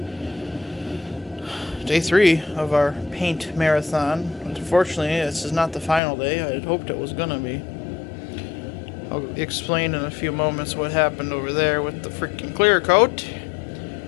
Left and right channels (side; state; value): right; drops out; at 6.0 s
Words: Day 3 of our paint marathon. Unfortunately, this is not the final day. I had hoped it was gonna be. I'll explain in a few moments what happened over there with the freaking clear coat.